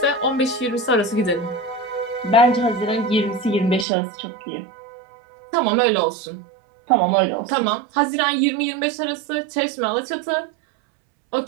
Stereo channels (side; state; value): left; drops out; at 3.9 s